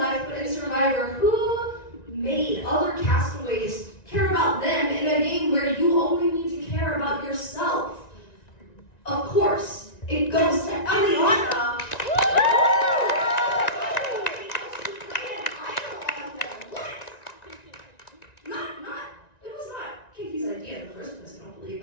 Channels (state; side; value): late; right; 1.9 ms